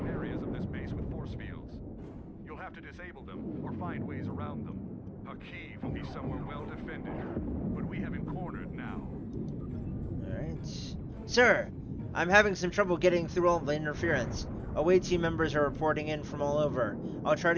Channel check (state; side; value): identical; both; correlation 1.00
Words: areas of this base with force fields. You'll have to disable them, or find ways around them. Hakiv will be somewhere well defended, but we have him cornered now. Alright. Sir, I'm having some trouble getting through all the interference. Away team members are reporting in from all over. I'll try